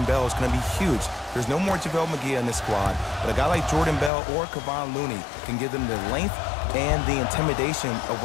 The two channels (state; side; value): drops out; right; at 4.1 s